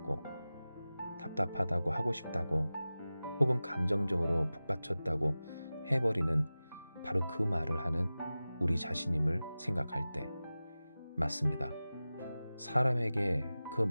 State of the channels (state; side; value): inverted; both; correlation -0.96